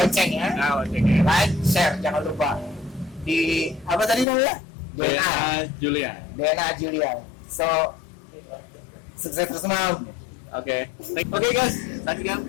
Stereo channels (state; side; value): drops out; right; at 4.2 s